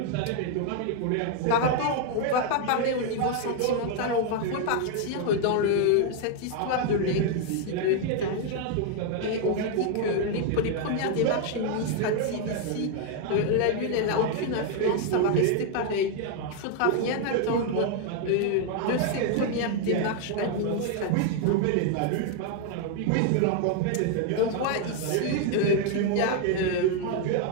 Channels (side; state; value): both; different; correlation 0.01